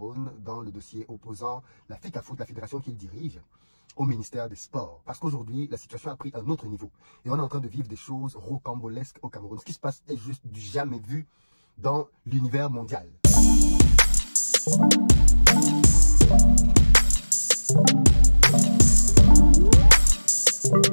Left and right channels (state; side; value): inverted; both; correlation -1.00